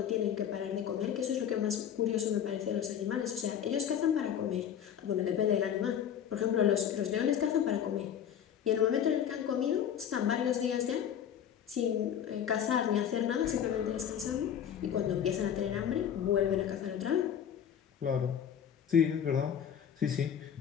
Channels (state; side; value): quieter; right; 9.0 dB